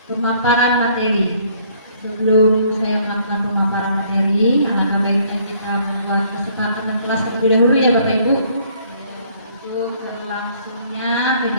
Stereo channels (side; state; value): both; inverted; correlation -0.62